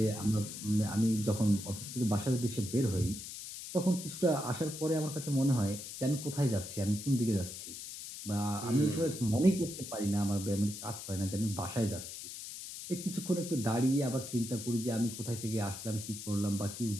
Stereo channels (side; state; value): left; noise; hiss, 10 dB below the sound